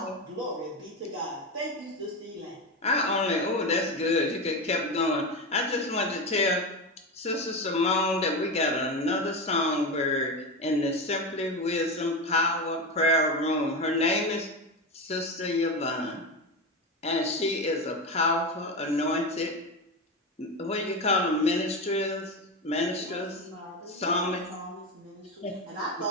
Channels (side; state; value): both; normal; correlation 0.18